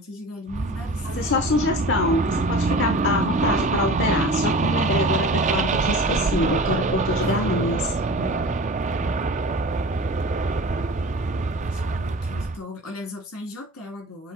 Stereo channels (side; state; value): both; normal; correlation 0.37